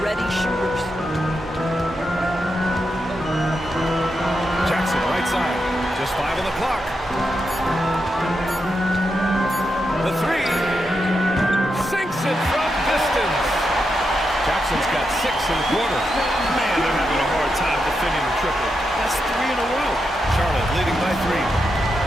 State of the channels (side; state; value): both; normal; correlation 0.85